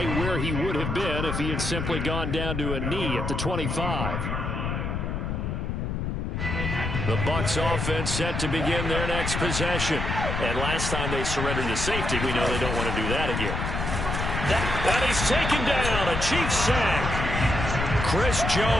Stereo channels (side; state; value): left; noise; rumble, 2 dB below the sound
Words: where he would have been if he had simply gone down to a knee at the 25. The Bucs offense set to begin their next possession. And last time they surrendered to safety, we know they don't want to do that again. That he's taken down, a Chiefs sack. Chris